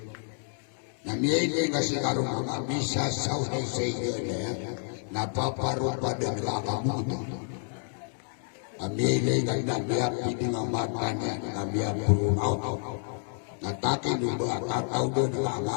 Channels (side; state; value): right; silent; 55 dB below the other